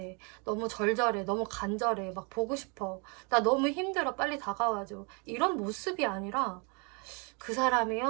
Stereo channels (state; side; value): quieter; left; 33.7 dB